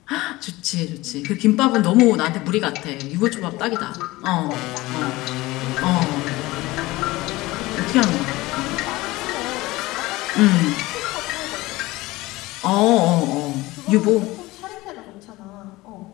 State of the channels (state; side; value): quieter; right; 19.8 dB